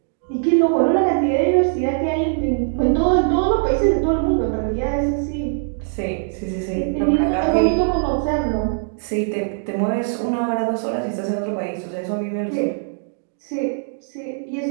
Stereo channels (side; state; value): left; silent; digital silence